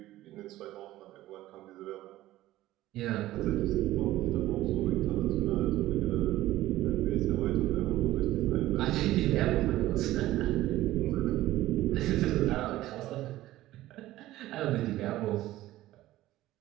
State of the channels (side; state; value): left; quieter; 15.6 dB